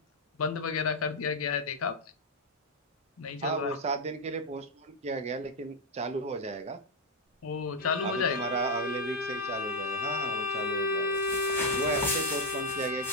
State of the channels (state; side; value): normal; both; correlation 0.01